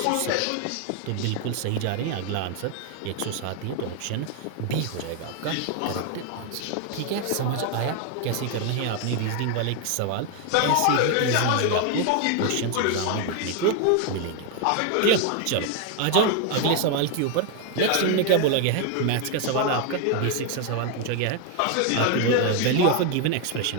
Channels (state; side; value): different; both; correlation 0.01